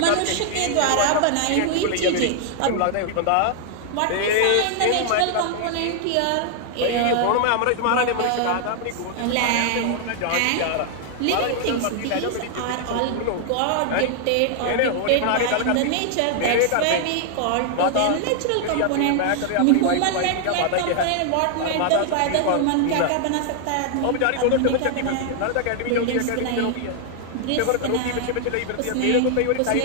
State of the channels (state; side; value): different; both; correlation 0.00